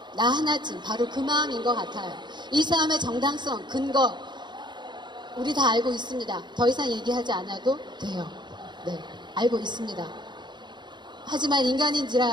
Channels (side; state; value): left; late; 0.22 ms